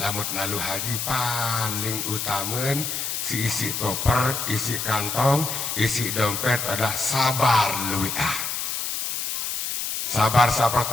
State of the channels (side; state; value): left; noise; hiss, 2 dB below the sound